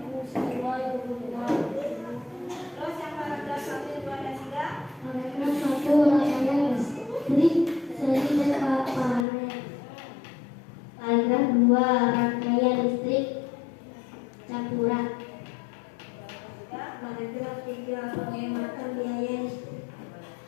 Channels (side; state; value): right; drops out; at 9.2 s